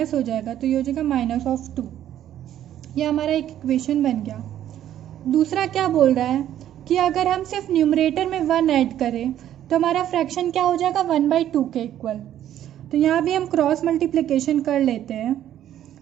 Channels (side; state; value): left; quieter; 11.5 dB